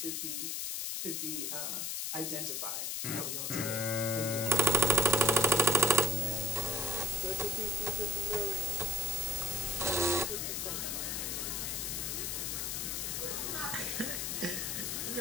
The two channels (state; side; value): noise; left; hiss, 1 dB below the sound